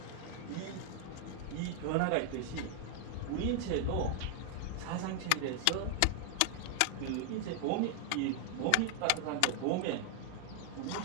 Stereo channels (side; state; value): both; different; correlation 0.00